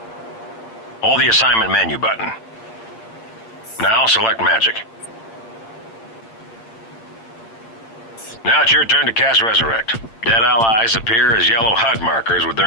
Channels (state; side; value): late; right; 8.9 ms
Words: Hold the assignment menu button. Now select Magic. Now it's your turn to cast Resurrect. Dead allies appear as yellow HUD markers with